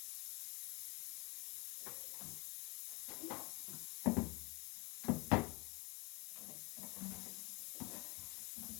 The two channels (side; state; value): right; quieter; 28.2 dB